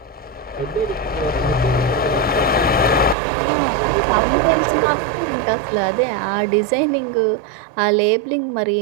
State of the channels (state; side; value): drops out; left; at 3.2 s